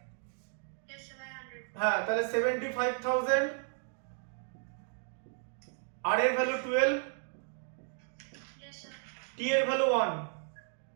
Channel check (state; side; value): silent; left; 55 dB below the other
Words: Yes sir, by 100। হ্যাঁ, তাহলে 75,000, আর এর ভ্যালু 12, ইয়েস স্যার। টি এর ভ্যালু 1।